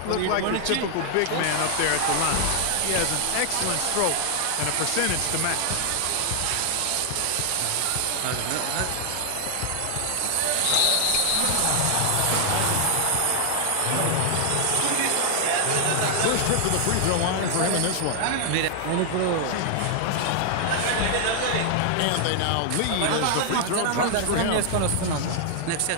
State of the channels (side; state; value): both; different; correlation 0.00